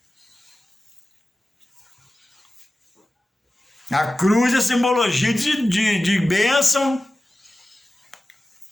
A cruz é simbologia de bênção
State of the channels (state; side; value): normal; both; correlation 0.95